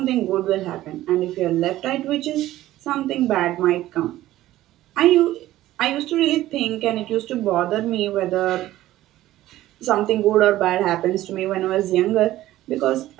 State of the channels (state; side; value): quieter; left; 15.0 dB